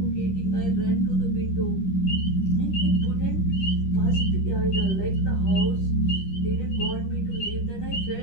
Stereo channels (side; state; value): right; late; 10 ms